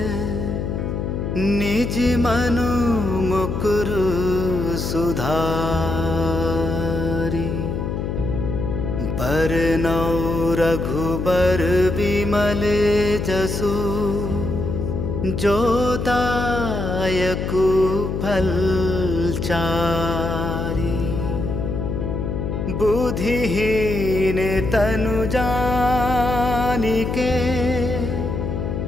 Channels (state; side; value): noise; left; hum, 2 dB below the sound